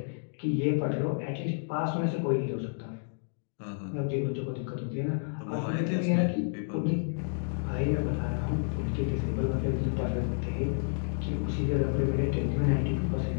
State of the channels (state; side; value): silent; right; digital silence